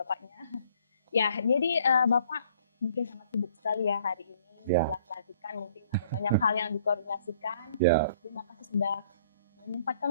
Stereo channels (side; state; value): both; inverted; correlation -0.60